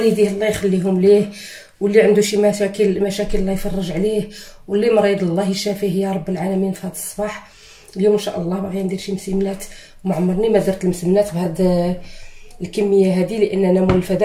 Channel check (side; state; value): both; identical; correlation 1.00